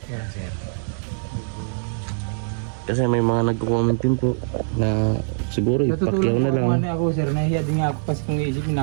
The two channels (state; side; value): silent; left; digital silence